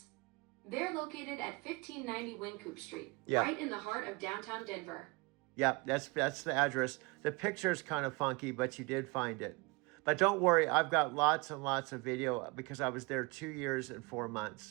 They're located at 1590 Wynkoop Street, Yeah. right in the heart of downtown Denver. Yep, that's the address. The picture is kind of funky, but you did find it. But don't worry, I've got lots and lots of video because I was there 2 years and 4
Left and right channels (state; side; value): quieter; left; 27.0 dB